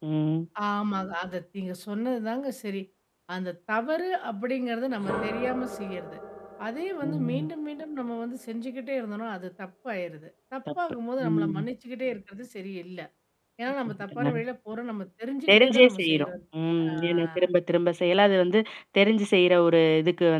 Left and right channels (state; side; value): identical; both; correlation 1.00